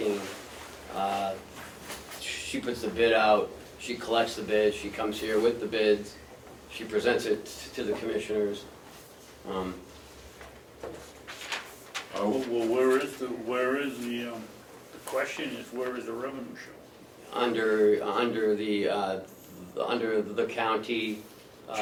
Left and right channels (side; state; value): both; identical; correlation 1.00